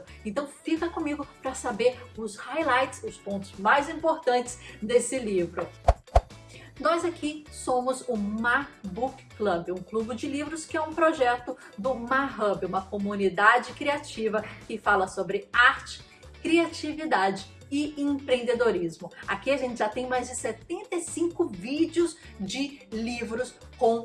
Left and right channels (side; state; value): both; identical; correlation 1.00